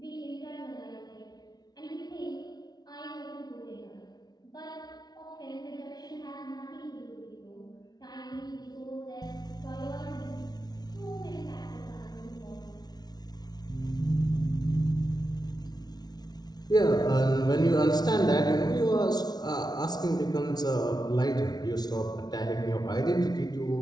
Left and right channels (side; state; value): right; late; 0.19 ms